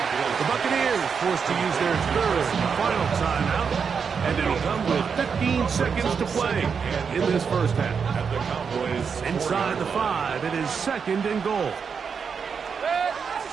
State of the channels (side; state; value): left; quieter; 6.2 dB